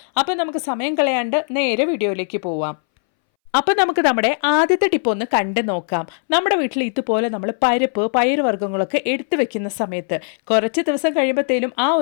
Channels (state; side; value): silent; right; 64 dB below the other